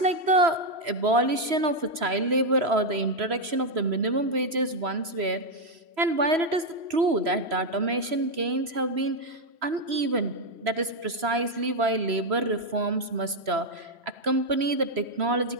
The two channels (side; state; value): left; late; 3.0 ms